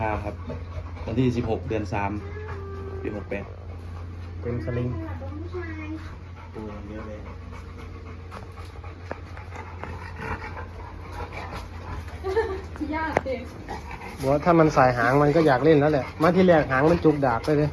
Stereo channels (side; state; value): both; identical; correlation 1.00